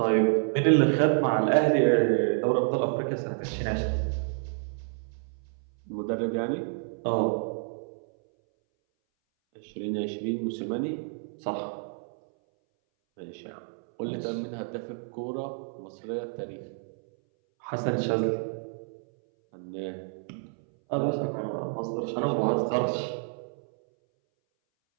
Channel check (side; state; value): left; silent; 59 dB below the other